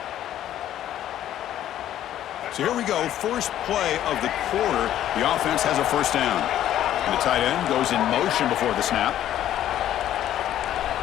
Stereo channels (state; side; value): quieter; right; 11.9 dB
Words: So here we go, first play of the quarter. The offense has a first down. And the tight end goes in motion before the snap.